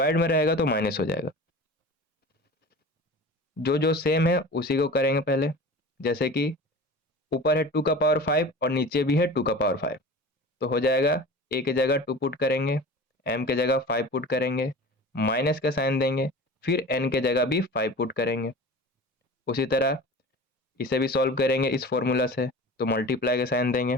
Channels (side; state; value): both; normal; correlation 0.36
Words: में रहेगा तो माइनस हो जाएगा। जो जो सेम है उसी को करेंगे पहले। जैसे कि ऊपर है 2 का पावर 5 और नीचे भी है 2 का पावर 5, तो हो जाएगा ए के जगह 2 पुट करेंगे, m के जगह 5 पुट करेंगे, माइनस का साइन देंगे, फिर n के जगह भी 5 पुट करेंगे। उसी तरह इसे भी सॉल्व करेंगे इस फॉर्मूला से, तो मल्टीप्लाई का साइन देंगे,